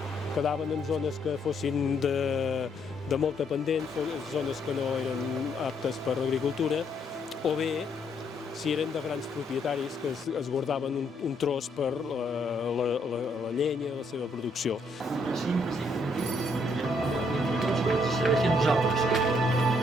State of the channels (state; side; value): normal; both; correlation 0.71